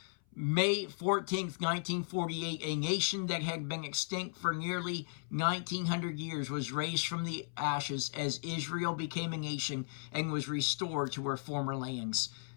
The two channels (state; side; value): silent; right; 54 dB below the other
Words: May 14th, 1948, a nation that had been extinct for nearly 1900 years was raised from the ashes as Israel became a nation and was restored to her former lands.